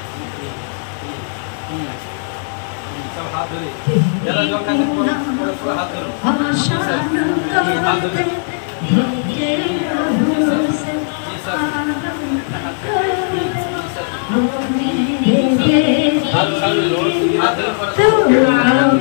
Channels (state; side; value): silent; right; digital silence